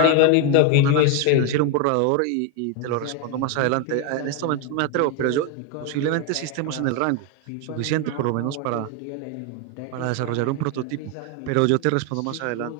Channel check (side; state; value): both; different; correlation 0.01